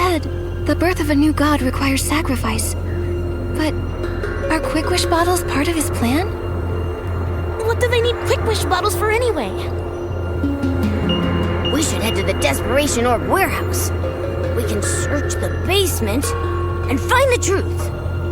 the birth of a new god requires sacrifice. But are Quick Wish bottles part of his plan? What do they need Quick Wish bottles for anyway? We should head to the Desperation Orb warehouse. We can search the basement and find the truth.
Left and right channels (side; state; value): both; identical; correlation 1.00